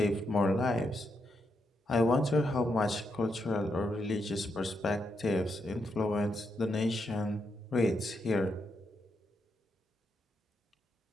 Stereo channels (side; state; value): both; normal; correlation 0.82